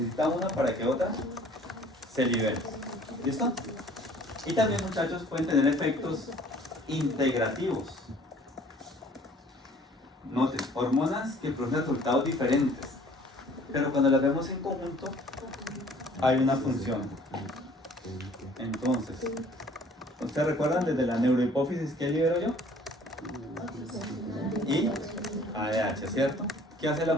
una para que otra se libere. ¿Listo? Y también muchachos pueden tener efectos integrativos. Noten, hormonas que producen resultados diferentes. Pero cuando las vemos en conjunto, hay una función. Entonces, ¿ustedes recuerdan desde la neurohipófisis qué libero yo? Y ADH, ¿cierto? ¿Qué hace la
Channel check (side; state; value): both; normal; correlation 0.54